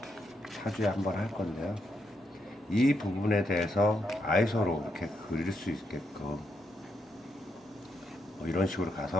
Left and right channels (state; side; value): normal; both; correlation 0.80